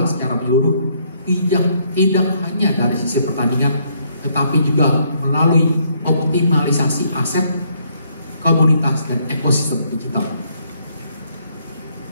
secara menyeluruh, tidak hanya dari sisi pertandingan, tetapi juga melalui optimalisasi aset, komunitas, dan ekosistem digital.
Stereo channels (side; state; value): both; inverted; correlation -0.70